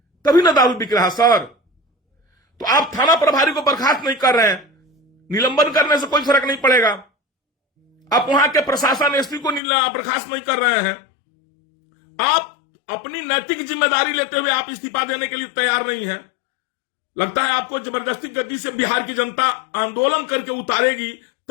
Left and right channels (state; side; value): drops out; right; at 9.6 s